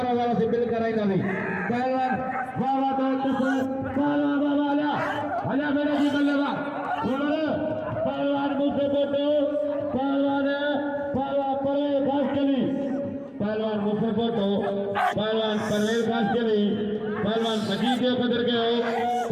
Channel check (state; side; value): identical; both; correlation 1.00